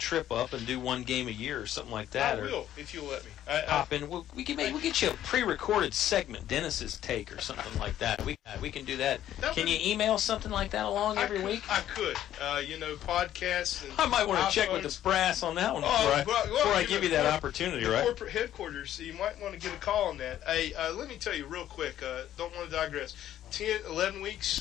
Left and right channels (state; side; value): quieter; right; 11.9 dB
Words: up and do one game a year or something like that? I will, if you'll let me. Pop in. We'll get you a pre-recorded segment, Dennis's take or something like that. We can do that. Can you email something like that along every week? I could. Podcasts. And I might want to check with the brass on that one before I give you that opportunity, right? Corporate headquarters, so you might want to get a call on that. Hey, let me tell you real quick. Don't want to digress. 11